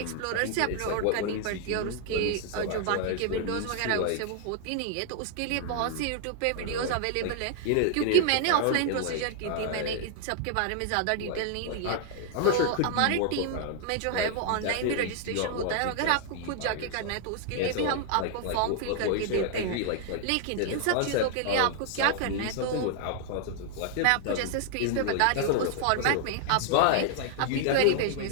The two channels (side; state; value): both; different; correlation 0.00